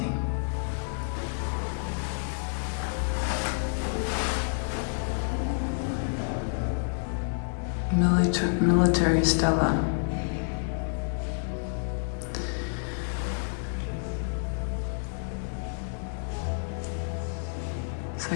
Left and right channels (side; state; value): right; silent; 59 dB below the other